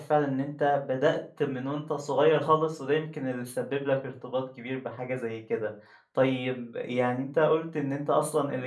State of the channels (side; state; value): both; identical; correlation 1.00